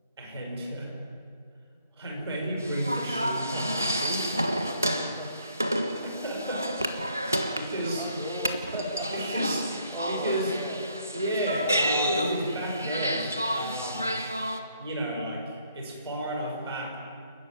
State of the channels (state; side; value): inverted; both; correlation -0.67